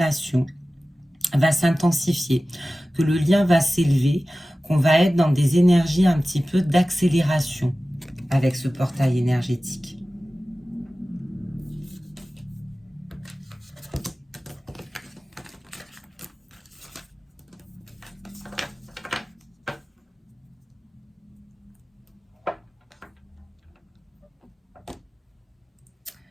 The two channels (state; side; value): normal; both; correlation 0.96